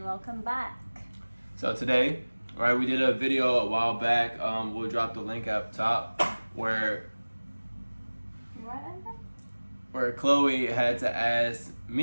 welcome back. So today, right, we did a video a while back. We'll drop the link up top where Chloe had to ask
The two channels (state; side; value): inverted; both; correlation -1.00